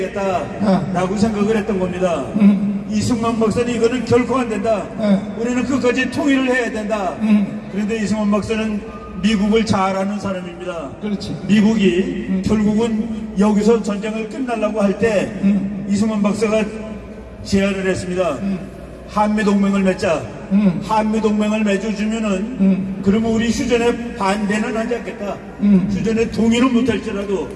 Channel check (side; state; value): both; identical; correlation 1.00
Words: 생각을 했던 겁니다. 이승만 박사는 이거는 결코 안 된다. 우리는 끝까지 통일을 해야 된다. 그런데 이승만 박사는 미국을 잘 아는 사람입니다. 그렇지. 미국이 결국은 여기서 전쟁을 끝내려고 할 때 이승만 박사가 제안을 했습니다. 한미동맹을 맺자. 한미동맹을 맺어주면은 그러면 우리 휴전에 반대는 하지 않겠다. 휴전에 동의는 못할지라도